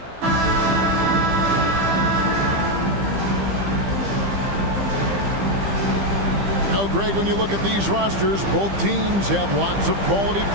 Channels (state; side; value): late; left; 15 ms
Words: Greg, when you look at these rosters, both teams have lots of quality